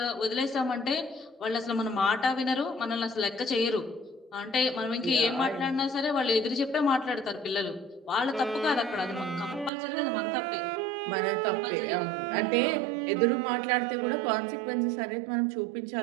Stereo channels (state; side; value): drops out; left; at 9.7 s